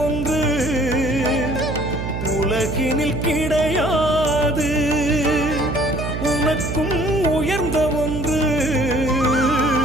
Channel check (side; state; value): right; noise; hum, 4 dB below the sound